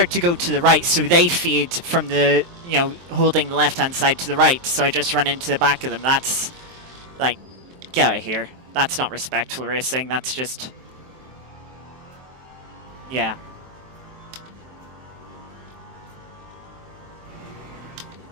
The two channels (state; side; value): late; left; 23 ms